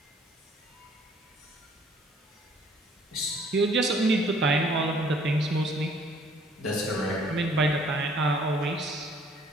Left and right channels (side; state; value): both; normal; correlation 0.59